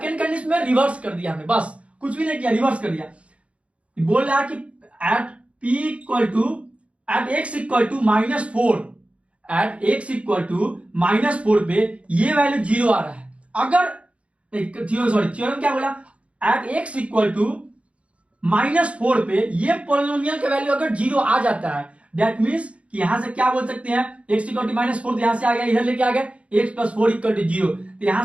कंडीशन में रिवर्स कर दिया हमने, बस कुछ भी नहीं किया, रिवर्स कर दिया। बोल रहा है कि at p equal to at x equal to -4, at x equal to -4 पे ये वैल्यू जीरो आ रहा है। अगर थ्योरम क्या बोला, एट x इक्वल टू -4 पे ये पॉलिनोमियल का वैल्यू अगर जीरो आ जाता है, दैट मींस कि यहां से क्या बोल सकते हैं, x इक्वल टू -4 तो यहां से आ गया, इधर लेके आ गए x प्लस 4 इक्वल टू 0, तो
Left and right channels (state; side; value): late; left; 0.062 ms